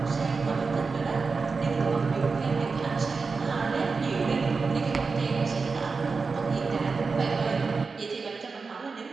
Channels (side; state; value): left; quieter; 4.6 dB